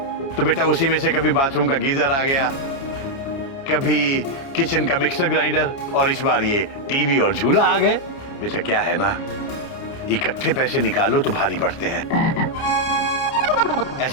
तो बेटा उसी में से कभी बाथरूम का गीजर आ गया, कभी किचन का मिक्सर ग्राइंडर, और इस बार ये टीवी और झूला आ गए। बेटा क्या है ना, इकट्ठे पैसे निकालो तो भारी पड़ते हैं,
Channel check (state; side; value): late; right; 29 ms